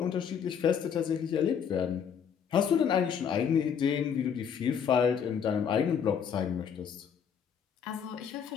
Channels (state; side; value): quieter; right; 7.5 dB